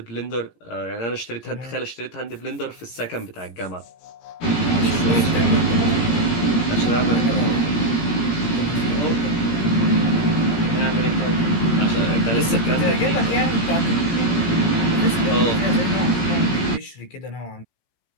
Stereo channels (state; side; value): late; right; 17 ms